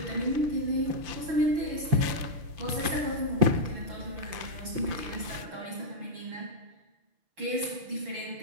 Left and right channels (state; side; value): late; left; 5.9 ms